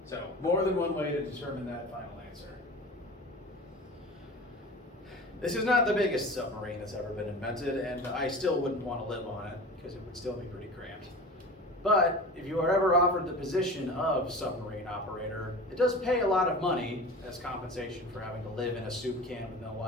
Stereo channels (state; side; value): normal; both; correlation 0.35